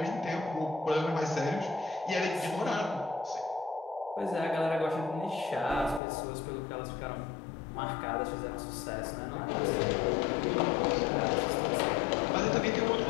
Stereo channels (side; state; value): right; drops out; at 6.0 s